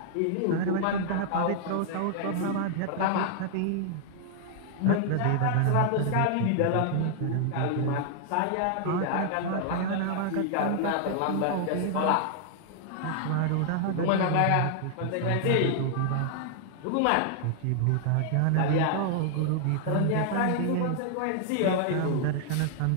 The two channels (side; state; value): both; different; correlation 0.00